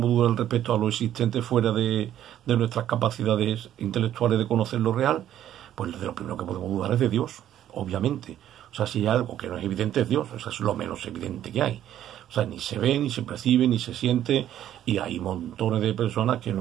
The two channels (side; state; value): left; quieter; 11.5 dB